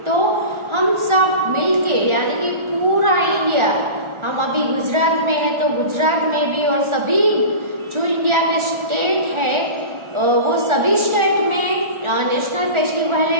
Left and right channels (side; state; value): left; late; 1.4 ms